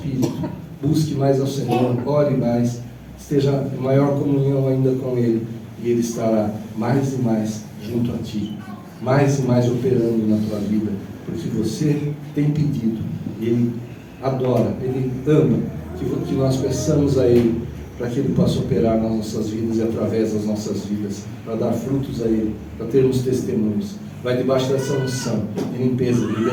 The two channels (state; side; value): identical; both; correlation 1.00